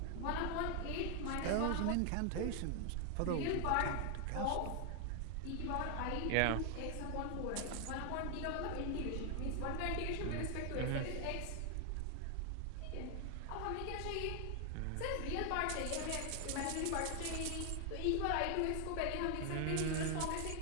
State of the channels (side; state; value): both; different; correlation 0.00